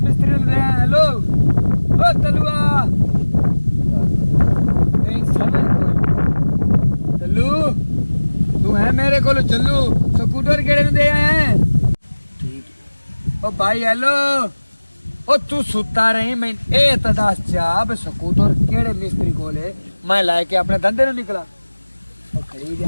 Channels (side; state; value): both; inverted; correlation -1.00